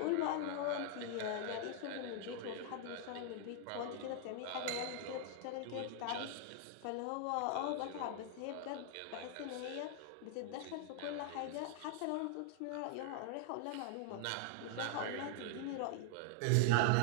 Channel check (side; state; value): both; different; correlation 0.00